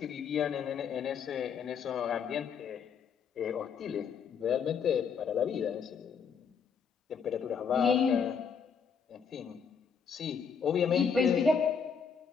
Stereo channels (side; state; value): right; quieter; 6.4 dB